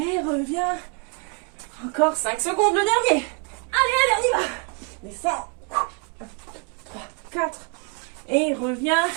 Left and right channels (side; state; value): left; quieter; 36.1 dB